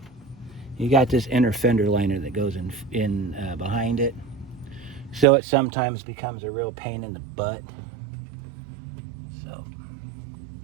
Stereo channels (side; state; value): left; drops out; at 5.2 s